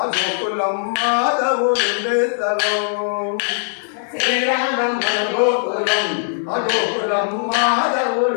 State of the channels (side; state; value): right; silent; digital silence